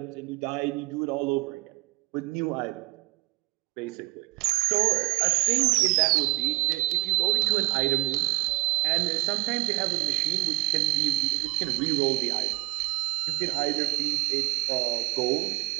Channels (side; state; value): left; quieter; 24.3 dB